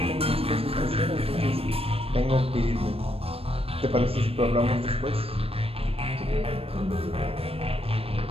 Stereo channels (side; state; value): left; late; 0.28 ms